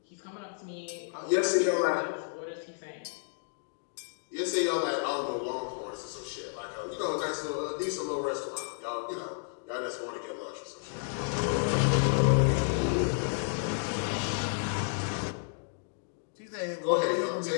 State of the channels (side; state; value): right; silent; digital silence